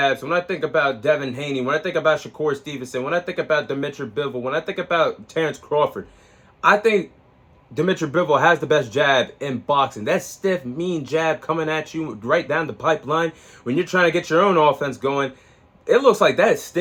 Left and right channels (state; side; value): identical; both; correlation 1.00